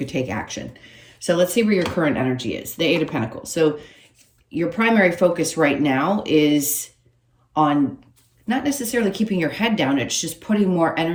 take action. So let's see where your current energy is. The Eight of Pentacles. So your primary focus right now is on not necessarily keeping your head down. It's just putting more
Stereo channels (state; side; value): identical; both; correlation 1.00